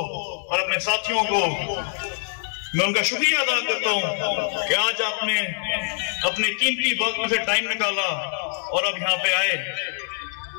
और अपने साथियों को मैं उनका शुक्रिया अदा करता हूं कि आज आपने अपने कीमती वक्त से टाइम निकाला और अब यहाँ पे आए।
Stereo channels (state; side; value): silent; right; digital silence